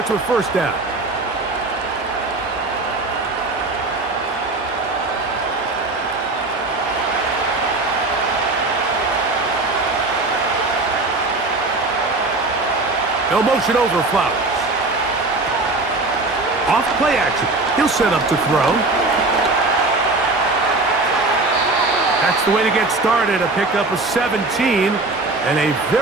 with first down. No motion over Flowers. Off play action. He'll set up to throw. That's the way to get started. A pickup of 17 and a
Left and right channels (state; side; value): quieter; left; 3.2 dB